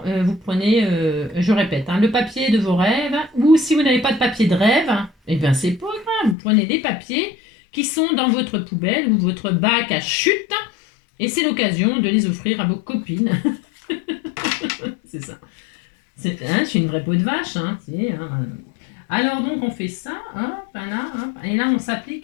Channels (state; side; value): drops out; right; at 6.4 s